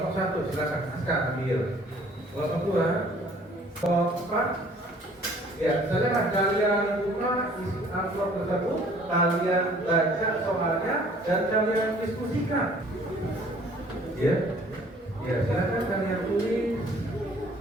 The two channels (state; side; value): normal; both; correlation 0.55